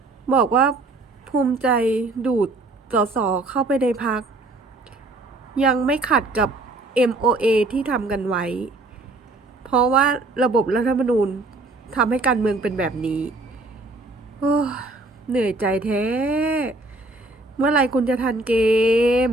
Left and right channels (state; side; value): quieter; left; 3.0 dB